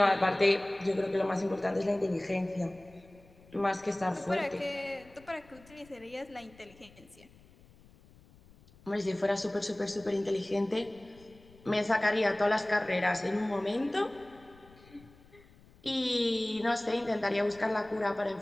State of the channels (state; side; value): noise; left; rumble, 25 dB below the sound